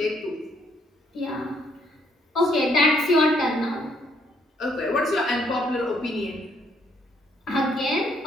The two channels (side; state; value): both; normal; correlation 0.69